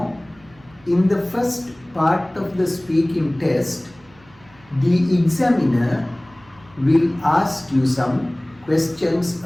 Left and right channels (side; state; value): right; noise; hum, 28 dB below the sound